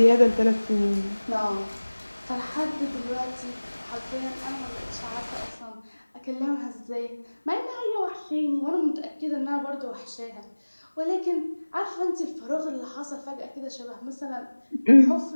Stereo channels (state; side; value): inverted; both; correlation -1.00